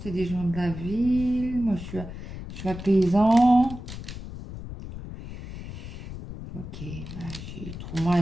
C'est des gens de la ville. Moi, je suis paysan. Ok, bah, trouve-moi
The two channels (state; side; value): noise; left; rumble, 10 dB below the sound